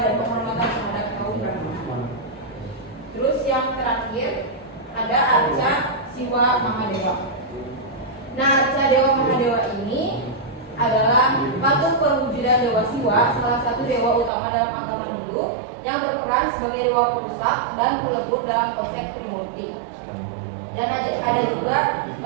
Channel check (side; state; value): left; drops out; at 14.3 s